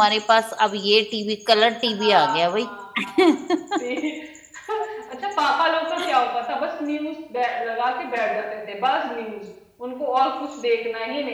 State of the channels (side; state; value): both; identical; correlation 1.00